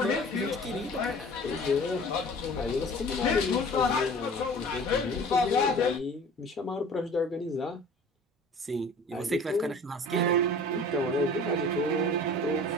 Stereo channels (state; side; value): normal; both; correlation 0.44